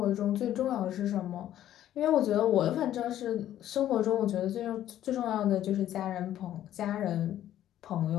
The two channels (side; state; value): right; quieter; 12.1 dB